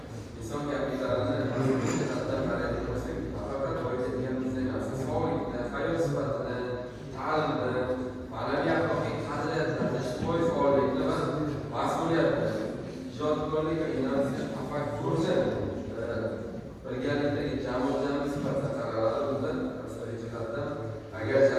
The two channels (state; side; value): identical; both; correlation 1.00